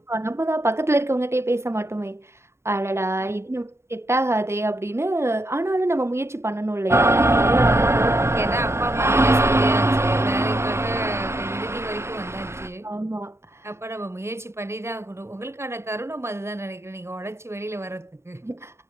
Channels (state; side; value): late; left; 0.13 ms